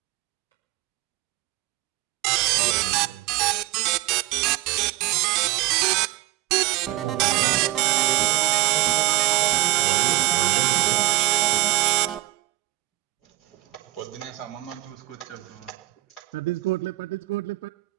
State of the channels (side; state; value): left; quieter; 18.2 dB